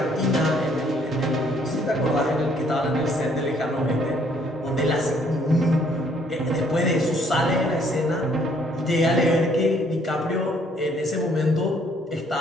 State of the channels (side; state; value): both; normal; correlation 0.65